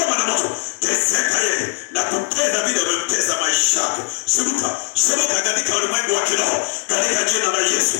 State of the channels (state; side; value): silent; right; 66 dB below the other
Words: moto, teseka yeye na kupenda vile umemtesa maisha yake. Shuka katika ulimwengu wa kiroho, katika jina la Yesu,